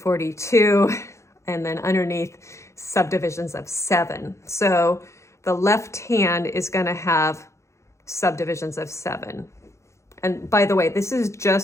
and then underneath subdivisions of 7. So the left hand is going to have subdivisions of 7. And by the way, this is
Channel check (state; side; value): late; right; 0.14 ms